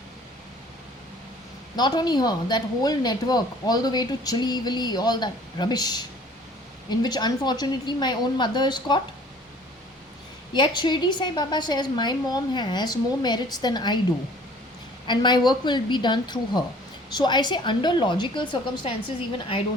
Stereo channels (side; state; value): both; normal; correlation 0.52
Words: Not only her, that whole network, all the way to Chili Willy, all that rubbish, in which unfortunately my own mother is caught. Yet Shirdi Sai Baba says my mom has more merits than I do, and my work will be done through her. So I say, under logical circumstances, even I